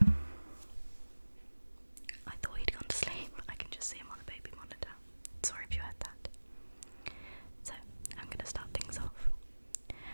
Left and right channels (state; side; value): inverted; both; correlation -1.00